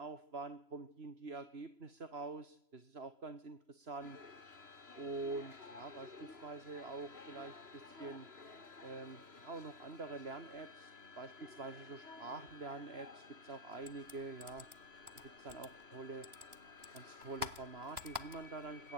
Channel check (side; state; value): left; late; 3.0 ms